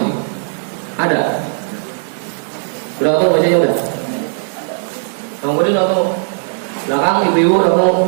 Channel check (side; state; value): left; silent; digital silence